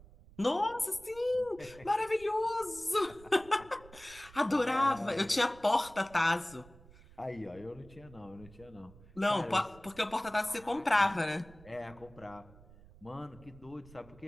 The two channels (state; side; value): noise; right; rumble, 22 dB below the sound